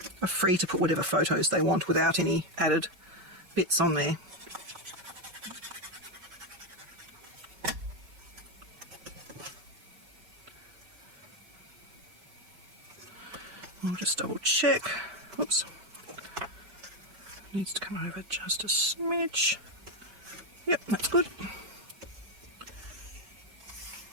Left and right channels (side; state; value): left; late; 5.3 ms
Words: free to put whatever photos they want without any added bits on there. I'll just double check. Oops. Needs to come over just a smidge. Yep, that's good.